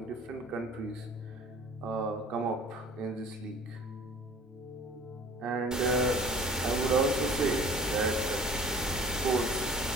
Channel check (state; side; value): normal; both; correlation 0.47